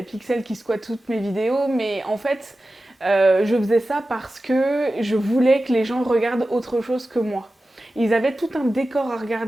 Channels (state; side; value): normal; both; correlation 0.94